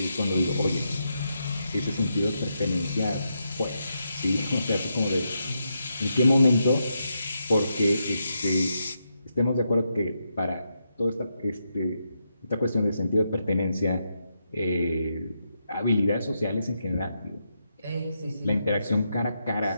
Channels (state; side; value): inverted; both; correlation -0.83